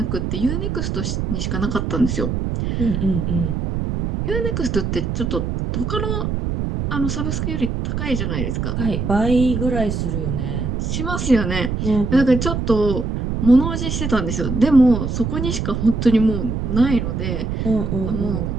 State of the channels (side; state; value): right; noise; rumble, 2 dB below the sound